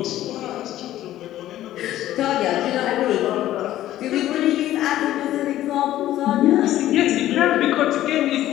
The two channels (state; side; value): quieter; right; 13.7 dB